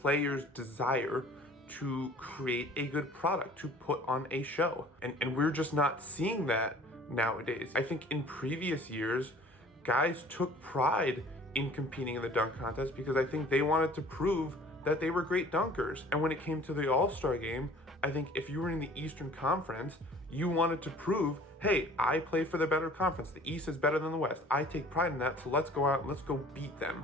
desire to create a good product, to put on a show. And we're just not seeing that nowadays. I think in previous years, guys took pride in competing in the dunk contest because I think they wanted to prove that they were great dunkers. And when it came to the All-Star game, I think if you were in the Eastern Conference, you wanted to prove, hey, I play for the better conference. The East is better than the West. I take pride in that, so let's go out and let's go beat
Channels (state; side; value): normal; both; correlation 0.49